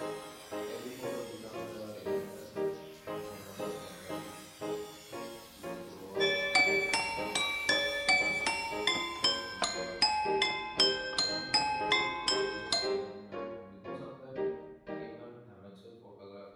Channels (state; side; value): identical; both; correlation 1.00